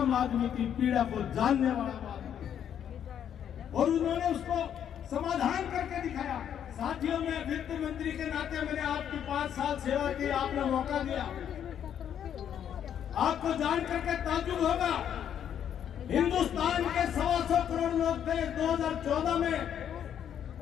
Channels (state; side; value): quieter; right; 9.3 dB